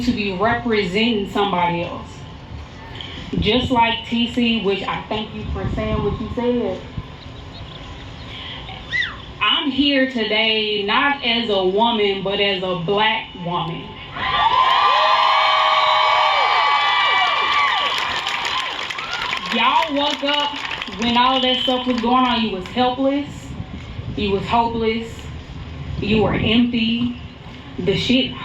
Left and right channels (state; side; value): identical; both; correlation 1.00